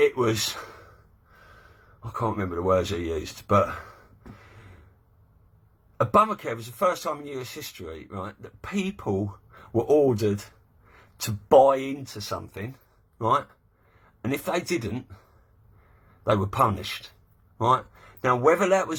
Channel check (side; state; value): both; identical; correlation 1.00